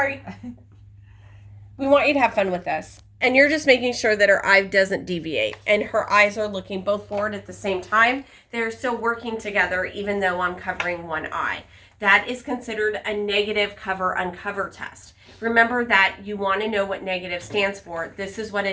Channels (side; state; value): both; identical; correlation 1.00